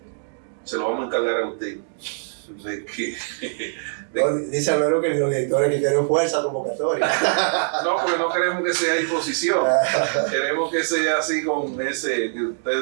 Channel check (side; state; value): left; silent; digital silence